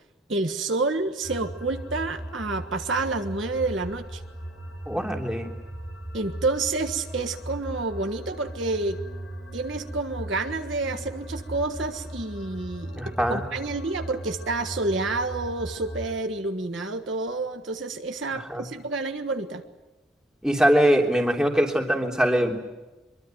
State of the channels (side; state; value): both; normal; correlation 0.55